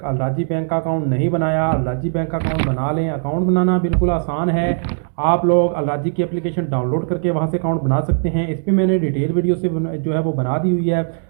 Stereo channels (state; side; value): silent; left; digital silence